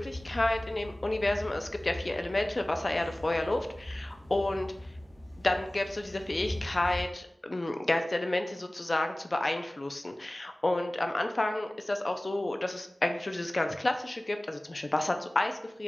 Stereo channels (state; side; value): normal; both; correlation 0.98